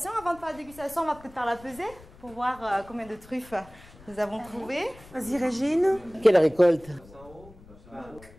Avant de faire la dégustation, on va peut-être faire la pesée pour voir combien de truffes nous avons trouvées. Vas-y, Régine. Quelle récolte?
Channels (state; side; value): noise; left; rumble, 22 dB below the sound